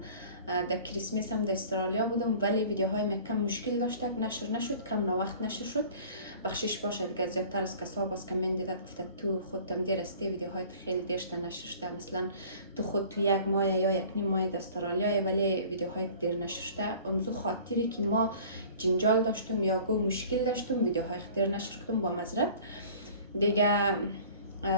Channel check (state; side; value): inverted; both; correlation -0.47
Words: در کریسمس هم در استرالیا بودم ولی ویدیوهای ما کم مشکل داشت نشر نشد، کم وقت نشر شد. بخشش باشه دیگه. زیادتر از کسا باز کامنت داد گفته تو خودت دیر استی ویدیوهای خیلی دیرشته نشر شده، مثلا تو خود تو یک ماه یا یک نیم ماه در استرالیا ولی ویدیوهای دیر نشر شده. امزو خاطری که ما جنجال داشتم یا گو مشکل داشتم ویدیوهای دیر نشر کردم با معذرت دیگه.